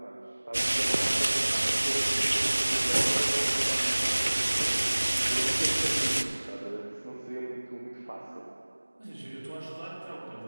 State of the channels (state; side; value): inverted; both; correlation -1.00